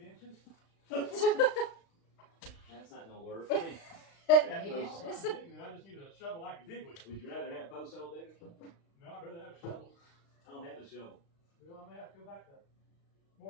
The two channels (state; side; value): late; right; 36 ms